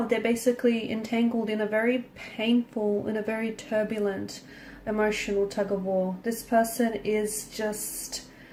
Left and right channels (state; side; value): identical; both; correlation 1.00